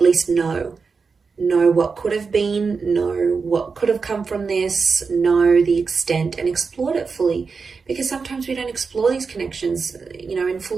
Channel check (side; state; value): left; quieter; 5.0 dB